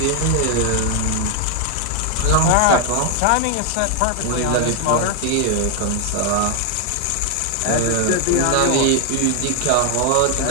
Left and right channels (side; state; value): both; different; correlation 0.01